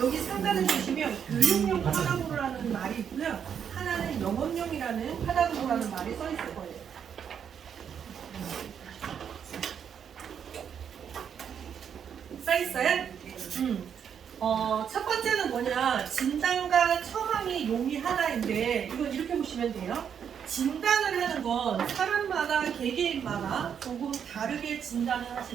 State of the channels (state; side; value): quieter; left; 7.9 dB